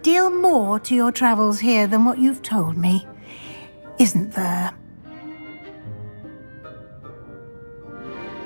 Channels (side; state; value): both; inverted; correlation -1.00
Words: deal more to your travels here than what you've told me. Isn't there?